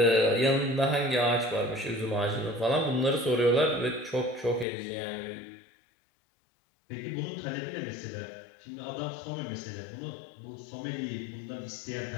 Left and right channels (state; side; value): drops out; right; at 4.7 s